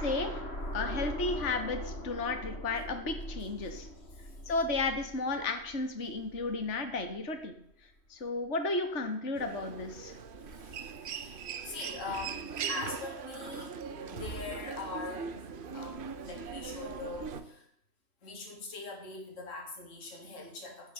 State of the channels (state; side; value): late; right; 3.1 ms